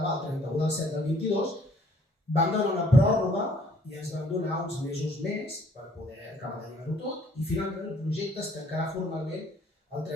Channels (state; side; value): normal; both; correlation 0.60